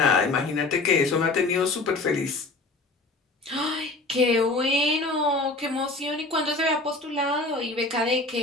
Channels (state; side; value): quieter; right; 3.2 dB